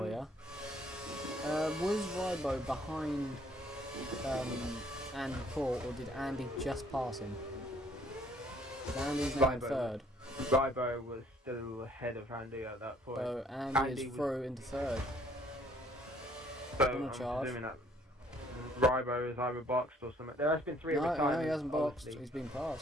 you. Was Rybo behind Andy Paul, or did Andy just pass him? Andy's now in third. Rybo was still ahead of Andy at that point. So Andy is through into third. So I'm assuming that Rybo is either boxed or something. There has been 3 retirements. No, he hasn't boxed. He's been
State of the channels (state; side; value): normal; both; correlation 0.62